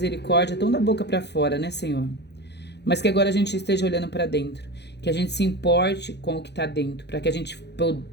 tão da boca para fora, né, Senhor? Mas que agora a gente esteja olhando para dentro, que a gente se importe com o que está dentro, para que a gente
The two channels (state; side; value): late; right; 0.50 ms